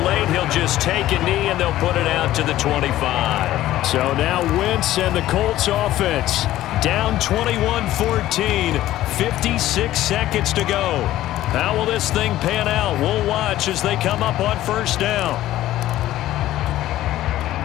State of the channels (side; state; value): right; quieter; 14.4 dB